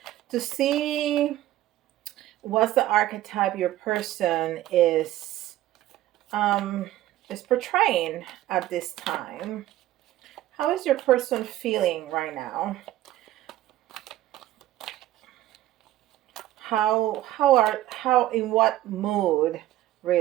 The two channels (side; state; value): left; quieter; 14.5 dB